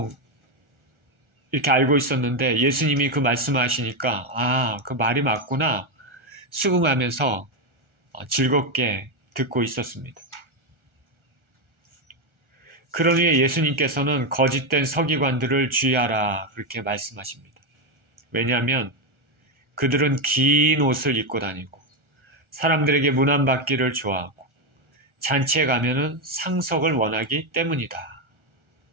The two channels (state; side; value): late; left; 1.4 ms